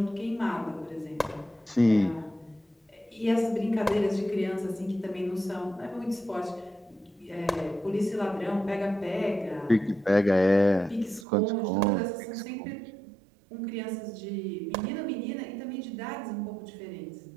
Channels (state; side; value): drops out; left; at 11.2 s